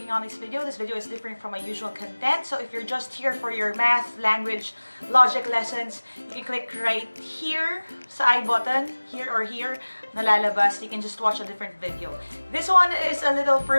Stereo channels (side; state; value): both; inverted; correlation -1.00